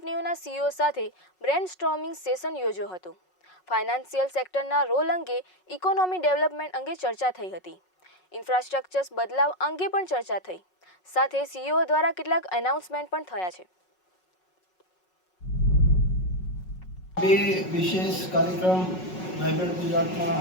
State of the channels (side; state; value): right; late; 5.4 ms